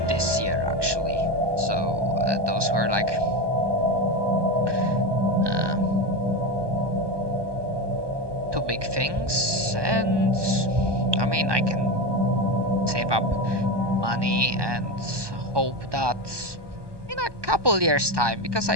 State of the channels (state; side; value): late; left; 1.2 ms